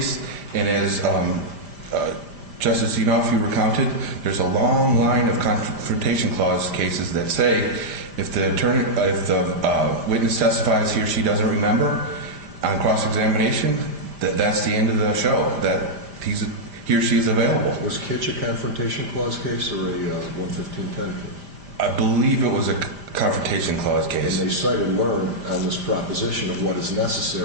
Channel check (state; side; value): late; left; 5.0 ms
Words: and as Justice Zinoff, you recounted, there's a long line of confrontation clause cases that say if the witness testifies he or she doesn't remember on cross-examination, that's the end of the show, that he or she is available. Was Kitch a confrontation clause case or a 115.10 case? I believe it was a confrontation clause case. And they cited Learn on this proposition of what is